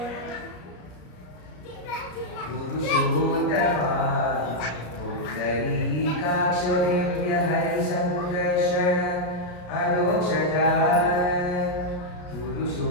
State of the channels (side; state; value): right; late; 34 ms